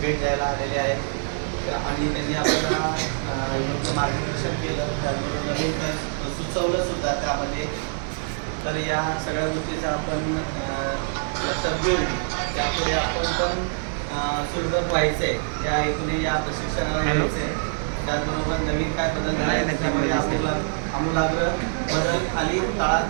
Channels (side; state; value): left; silent; digital silence